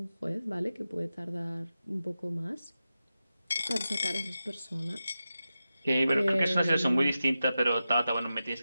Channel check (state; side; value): inverted; both; correlation -0.92